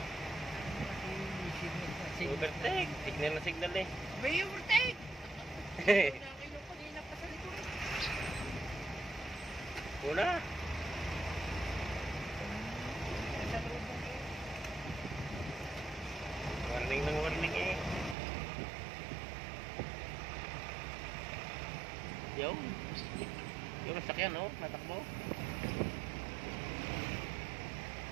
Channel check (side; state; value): left; drops out; at 18.2 s